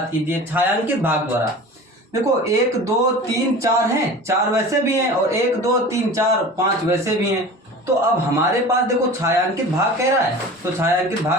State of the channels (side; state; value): both; normal; correlation 0.37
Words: कीजिए। छायांकित भाग द्वारा देखो 1 2 3 4 हैं, 4 वैसे भी हैं और 1 2 3 4 5 वैसे भी हैं। तो अब हमारे पास देखो छायांकित भाग कह रहा है, तो छायांकित